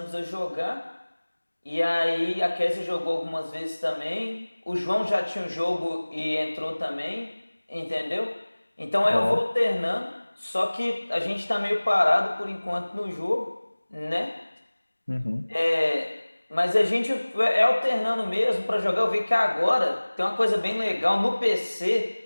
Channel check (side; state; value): both; inverted; correlation -1.00